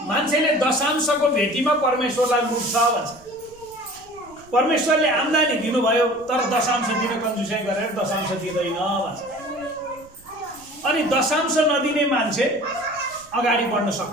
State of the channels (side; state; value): right; noise; rumble, 27 dB below the sound